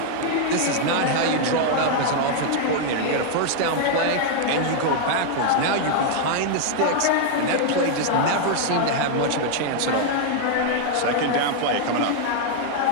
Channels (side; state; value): both; different; correlation 0.00